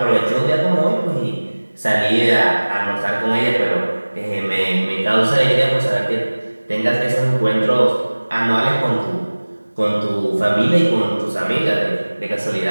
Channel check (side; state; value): both; inverted; correlation -1.00